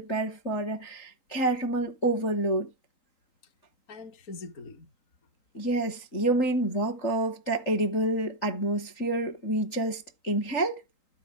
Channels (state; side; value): late; right; 3.8 ms